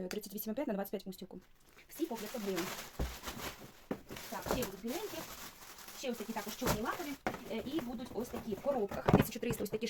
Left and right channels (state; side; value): identical; both; correlation 1.00